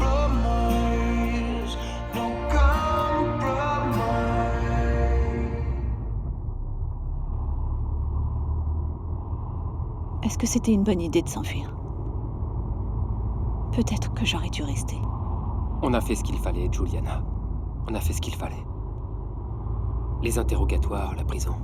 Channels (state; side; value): identical; both; correlation 1.00